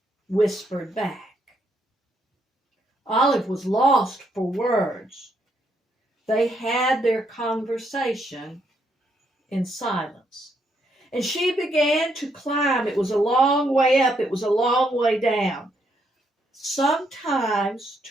whispered back. Olive was lost for words. They had their conversation in silence. And she began to climb. It was a long way up, it was a long way down. Sometimes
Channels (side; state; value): both; normal; correlation 0.75